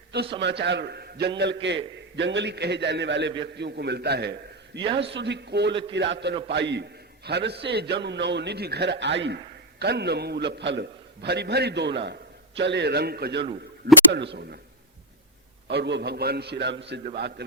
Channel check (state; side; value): normal; both; correlation 0.03